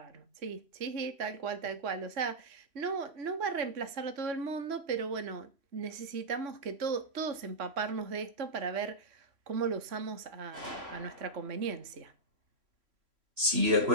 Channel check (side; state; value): left; late; 3.0 ms